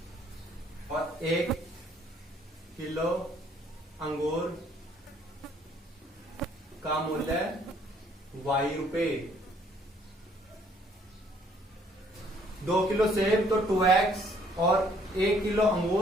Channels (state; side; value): normal; both; correlation 0.63